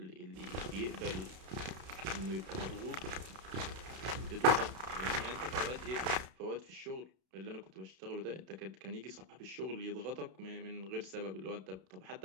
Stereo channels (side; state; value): left; late; 32 ms